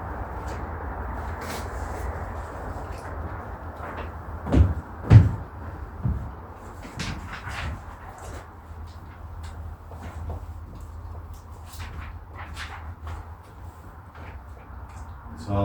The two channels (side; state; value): both; identical; correlation 1.00